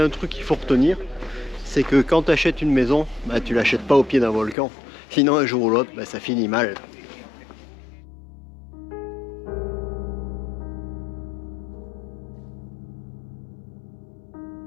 un truc qu'il faut retenir, c'est que quand tu achètes une maison, bah, tu l'achètes pas au pied d'un volcan. Sinon un jour ou l'autre, bah, ça finit mal.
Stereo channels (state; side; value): drops out; right; at 4.5 s